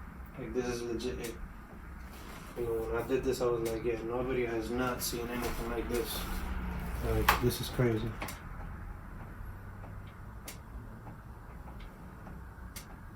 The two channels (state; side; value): identical; both; correlation 1.00